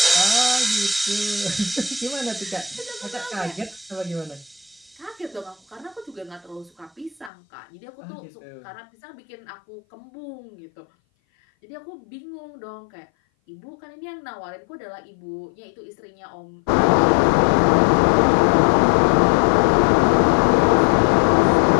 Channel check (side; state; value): right; drops out; at 7.3 s